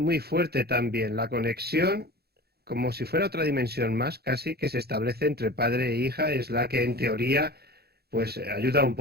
fuerte también. La conexión, como si fuera otra dimensión más, casi que se establece entre padre e hija, es la que en teoría pues ayuda un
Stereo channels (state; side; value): late; left; 0.46 ms